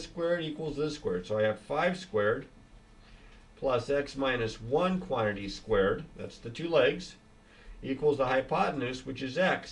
squared equals this squared. So I have 5 squared plus x minus 1 quantity squared, that's the 2 legs, equals the hypotenuse, which is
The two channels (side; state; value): both; identical; correlation 1.00